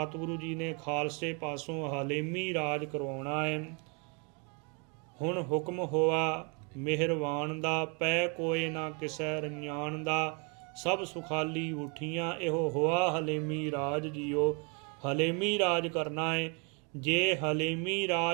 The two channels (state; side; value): quieter; left; 34.9 dB